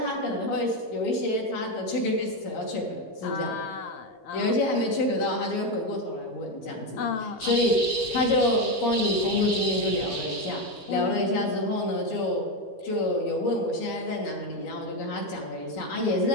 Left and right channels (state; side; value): late; right; 12 ms